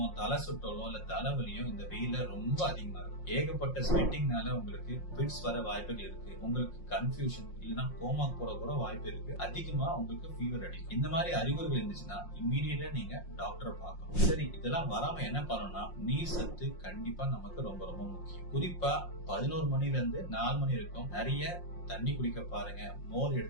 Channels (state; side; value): late; right; 5.6 ms